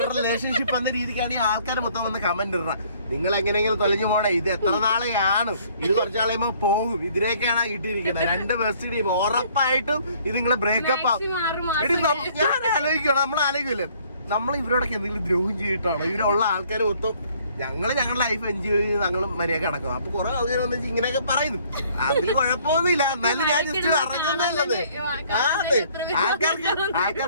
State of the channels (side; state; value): both; inverted; correlation -0.60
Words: റിലേഷൻഷിപ്പ് എന്ന രീതിക്കാണ് ഈ ആൾക്കാർ മൊത്തം വന്ന് കമന്റ് ഇടണം. നിങ്ങൾ എങ്ങനെയെങ്കിലും തൊലഞ്ഞു പോണേ, ഇത് എത്ര നാളെയാണ്, ഇത് കുറച്ച് നാളെയുമ്പോ പോകും. ഇതിലേക്കാണ് ഇട്ടിരിക്കുന്നത്. 2 ബെസ്റ്റ് ടീം ഉറപ്പായിട്ടും ഇത് നിങ്ങള് ബ്രേക്കപ്പ് ആവും. ഞാൻ ആലോചിക്കണം, നമ്മൾ ആലോചിക്കില്ലേ, നമ്മൾ ഇവരോടൊക്കെ എന്തെങ്കിലും ദ്രോഹം ചെയ്തിട്ടാണോ? ഇവരുള്ള ആൾക്കാർ മൊത്തം ഞങ്ങളുടെ ലൈഫ് എൻജോയ് ചെയ്ത് ഞങ്ങൾ മര്യാദ കിടക്കും. അപ്പൊ കുറെ ആൾക്കാർ വന്ന് ഇങ്ങനെയൊക്കെ പറയുന്നു. അതിൽ കുഴപ്പമൊന്നുമില്ല, എന്നാലും ഞാൻ ജസ്റ്റ് അറിഞ്ഞത്.